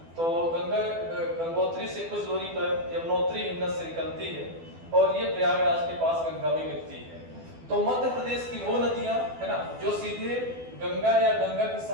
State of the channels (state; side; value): late; left; 12 ms